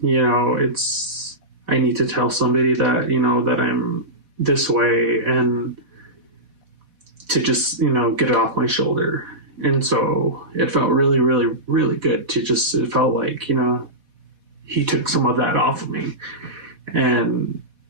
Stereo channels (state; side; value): late; left; 4.1 ms